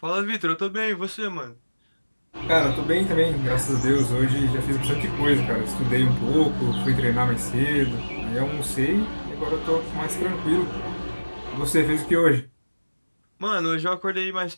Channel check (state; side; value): inverted; both; correlation -1.00